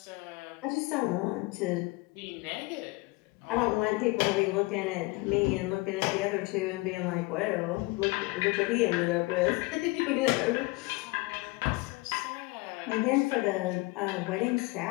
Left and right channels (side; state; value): right; quieter; 23.5 dB